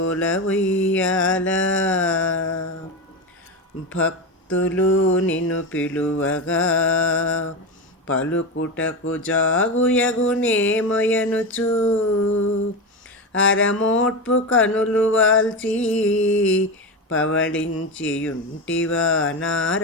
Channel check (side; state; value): both; normal; correlation 0.17